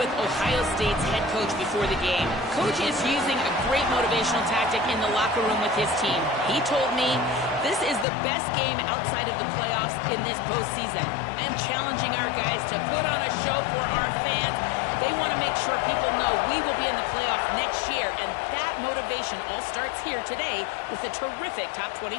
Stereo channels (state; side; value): drops out; right; at 8.1 s